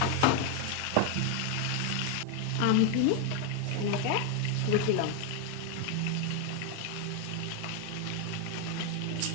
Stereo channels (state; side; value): different; both; correlation 0.01